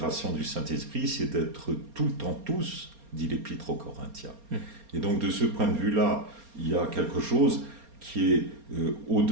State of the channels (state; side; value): late; left; 4.3 ms